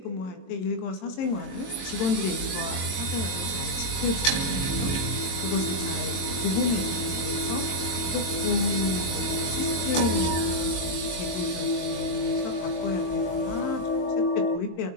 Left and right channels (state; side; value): late; right; 22 ms